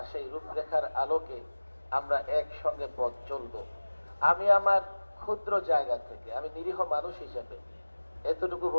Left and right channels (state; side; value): inverted; both; correlation -1.00